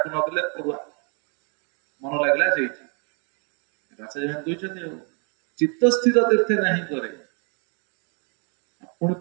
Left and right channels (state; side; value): quieter; left; 37.0 dB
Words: ନଦେଲେ ଅରୁଆ। ମନ ଲାଗିଲା ସେଇଠି। ଆଚାର୍ଯ୍ୟ କହିଛନ୍ତି ଆଉ ଚିତ୍ତ ସ୍ଥିର ତୀର୍ଥେ ନାହିଁ କରେ। ପୁଣି